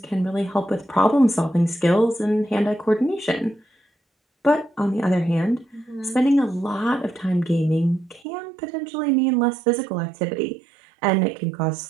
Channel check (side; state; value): left; drops out; at 8.2 s